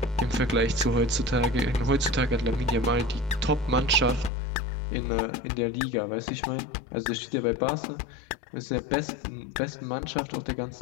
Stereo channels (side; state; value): right; drops out; at 4.3 s